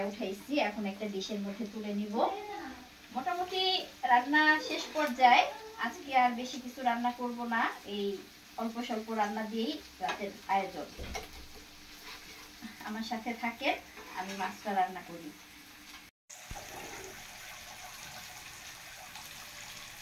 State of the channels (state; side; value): identical; both; correlation 1.00